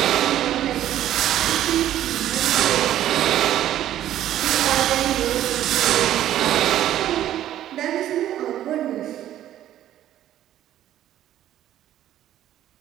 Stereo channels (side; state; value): left; quieter; 12.2 dB